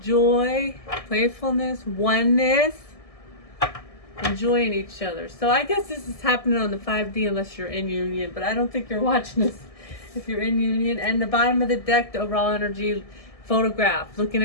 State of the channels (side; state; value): right; late; 1.6 ms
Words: playfulness, oneness, enjoying each other. So I guess this is happening on the 5D unless you're in union, but I don't think you're watching this if you're in union. And the bottom of the deck, the overall energy photograph, looking